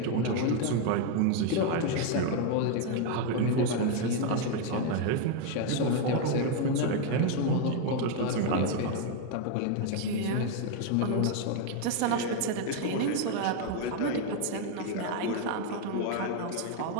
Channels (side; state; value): both; different; correlation 0.01